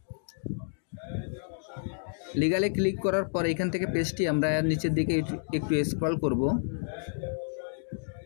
লিগালে ক্লিক করার পর এখান থেকে পেজটি আমরা নিচের দিকে একটু স্ক্রল করব।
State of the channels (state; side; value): silent; right; digital silence